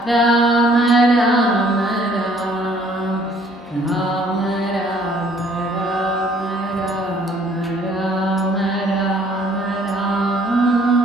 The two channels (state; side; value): normal; both; correlation 0.60